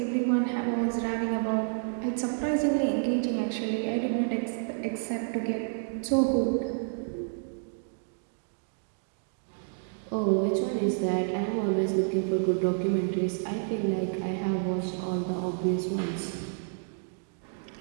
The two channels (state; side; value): silent; left; digital silence